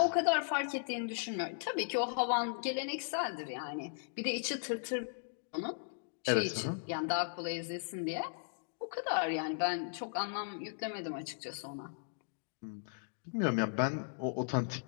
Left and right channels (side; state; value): right; silent; digital silence